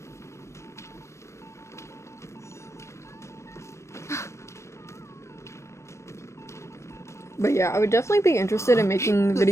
But yeah, I would definitely be interested in making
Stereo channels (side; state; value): right; late; 0.13 ms